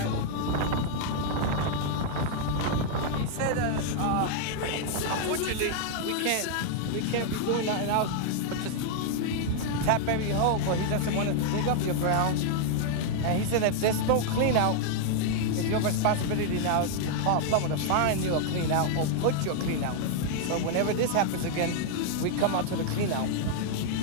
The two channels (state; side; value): different; both; correlation 0.00